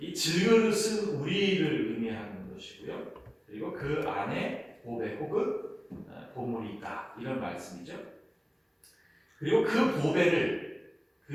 질그릇은 우리를 의미하는 것이고요, 그리고 그 안에 보배 혹은 보물이 있다, 이런 말씀이죠. 그리고 그 보배를,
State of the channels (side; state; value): both; identical; correlation 1.00